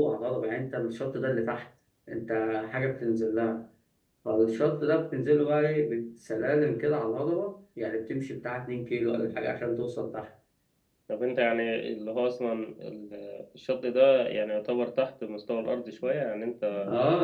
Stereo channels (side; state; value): both; identical; correlation 1.00